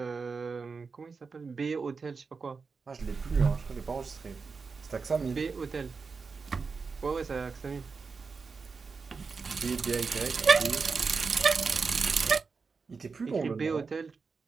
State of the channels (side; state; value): left; quieter; 4.9 dB